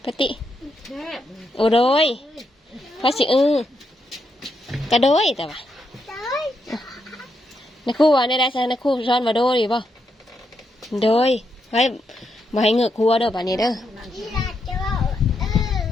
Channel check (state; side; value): normal; both; correlation 0.81